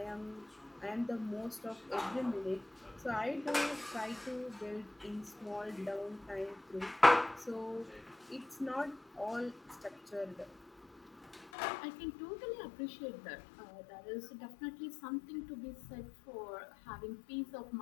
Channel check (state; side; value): drops out; right; at 11.5 s